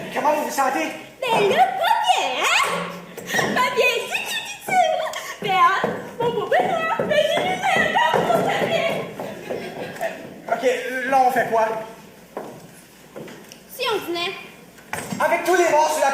Comment vous vous sentez? Ben là, pas bien, hein? Pas bien, dit. Ben, hein, mon beau bonheur, ben, j'ai lu encore pour ta bien. OK, là, on fait quoi? Si on venait. Avec tous les morts sur la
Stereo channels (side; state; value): both; identical; correlation 1.00